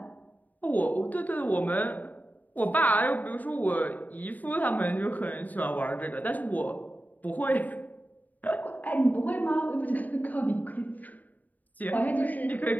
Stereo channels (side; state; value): right; late; 0.079 ms